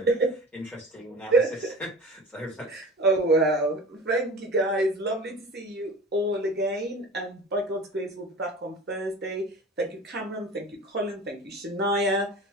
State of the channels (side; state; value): both; normal; correlation 0.37